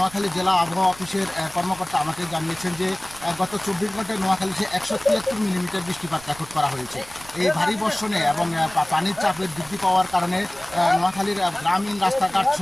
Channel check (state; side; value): noise; right; rumble, 20 dB below the sound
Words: জেলা আবহাওয়া অফিসের কর্মকর্তা আমাকে জানিয়েছেন যে গত 24 ঘন্টায় নোয়াখালীতে 173 মিলিমিটার বৃষ্টিপাত রেকর্ড করা হয়েছে। এই ভারী বর্ষণে এবং পানির চাপের বৃদ্ধি পাওয়ার কারণে নোয়াখালীর গ্রামীণ রাস্তাঘাট